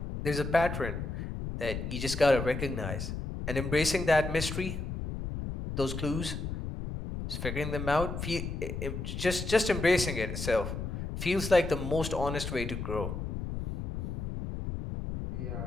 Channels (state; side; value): noise; left; rumble, 5 dB below the sound